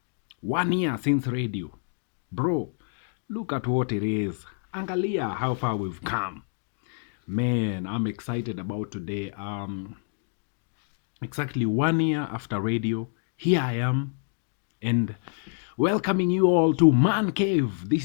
1 year since radio. Bro, look at what it is. Angalia how far we've come. Man, I'm excited about today. Exactly 1 year after radio, here I am and welcoming you all to Man Cave.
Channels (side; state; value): right; silent; digital silence